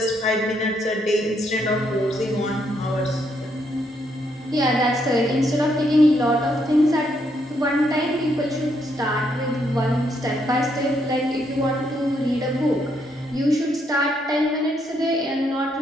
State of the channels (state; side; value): normal; both; correlation 0.75